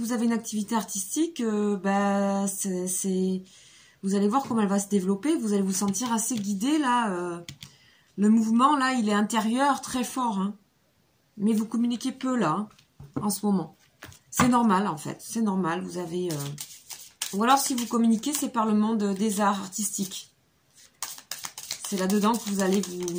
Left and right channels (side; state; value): both; identical; correlation 1.00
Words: avez une activité artistique, vous allez voir comment elle va se développer. Vous allez vous sentir assez guidé, là. Le mouvement, là, il est intérieur, très fort. Hein. Mais vous communiquez peu, là, hein, en ce moment. C'est normal, en fait. C'est normal. Vous avez... Ou alors, si vous communiquez, c'est par le monde des arts artistiques. C'est là-dedans que vous allez